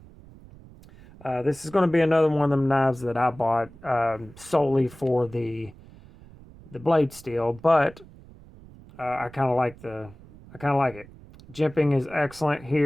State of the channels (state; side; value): noise; right; rumble, 21 dB below the sound